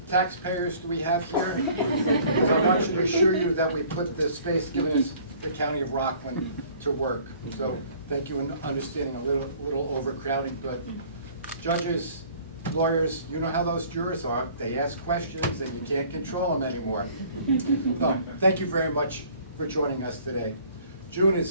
taxpayers do we have here? Because I want to assure you that we put the space given us the County of Rockland to work. So thank you in understanding a little overcrowding, but judges, lawyers, you know how those jurors are. They ask questions and you can't control them anymore. So thank you very much for joining us today. June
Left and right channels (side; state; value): both; inverted; correlation -0.53